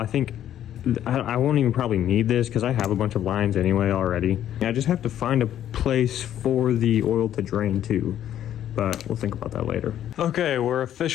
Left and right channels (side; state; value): right; quieter; 11.1 dB